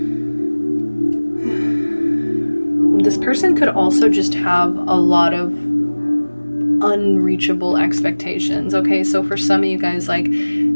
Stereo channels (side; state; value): both; inverted; correlation -1.00